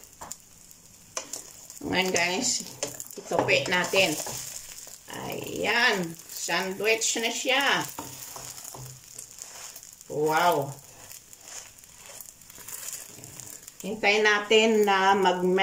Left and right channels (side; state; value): both; identical; correlation 1.00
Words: Ngayon guys, itupi natin. Ayan, sandwich na siya. Wow! Hintayin natin na